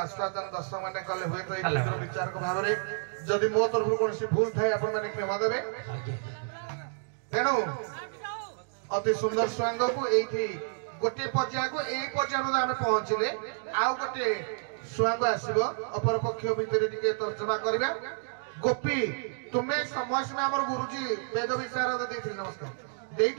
दर्शक मैंने कले हुए तो विचारक भाव में जदि मो तरफ कौन भूल थाए आपण मैंने क्षमा देवे तेणु अति सुंदर स्वयं को एठी गोटे पर्याय को ए पर्याय आम पहुंचले आउ गोटे स्वयं आसब अपर पक्ष भितर टिके तर्जमा करबा गोपी तुम्हें समय समय हमर गुरुजी वेद विचार देथिले नमस्कार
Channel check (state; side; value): silent; left; digital silence